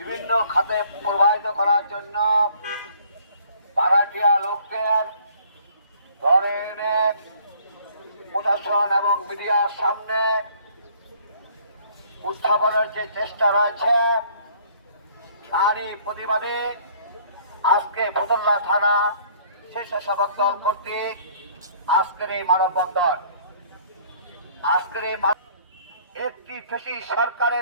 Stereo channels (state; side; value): inverted; both; correlation -0.57